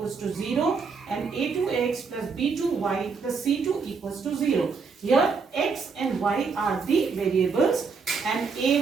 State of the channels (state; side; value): quieter; left; 5.1 dB